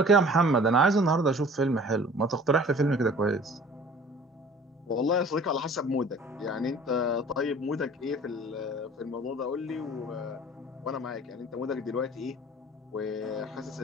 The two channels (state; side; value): normal; both; correlation 0.48